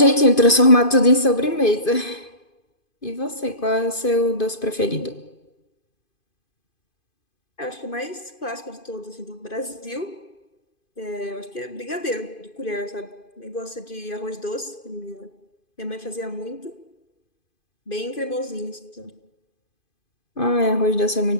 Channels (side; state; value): right; late; 2.5 ms